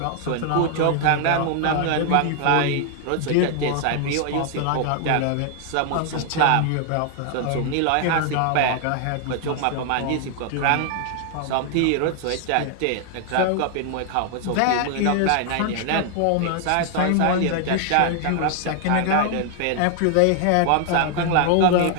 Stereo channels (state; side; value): different; both; correlation 0.00